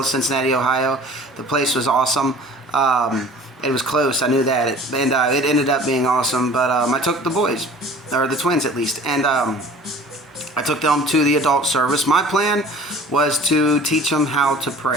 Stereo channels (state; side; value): normal; both; correlation 0.46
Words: Cincinnati, Ohio. The place was awesome. It was close, I knew that, it ended up being awesome. But I took the boys, or the twins at least, and I took them to the adult service. My plan was to teach them how to